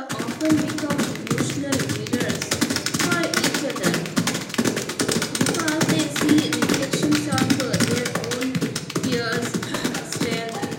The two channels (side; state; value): both; identical; correlation 1.00